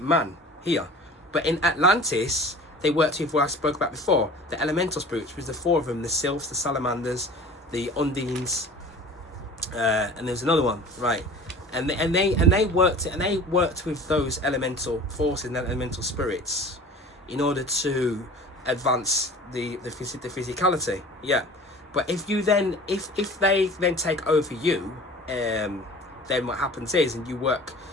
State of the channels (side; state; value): both; normal; correlation 0.42